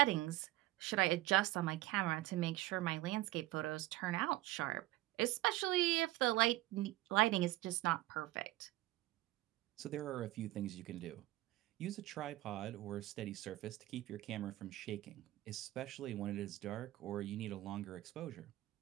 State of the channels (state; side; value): quieter; left; 17.3 dB